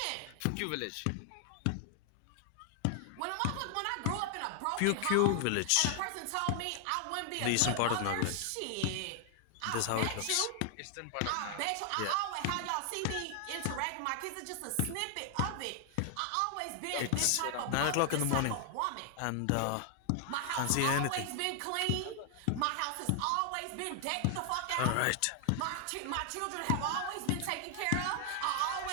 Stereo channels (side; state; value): both; different; correlation 0.00